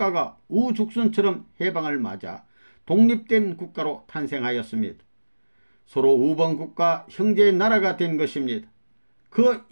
우죽순처럼 해방을 맞아 독립된 국가로 탄생하였습니다. 서로 우방국가 형제의 나라가 된 것입니다. 그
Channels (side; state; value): both; inverted; correlation -1.00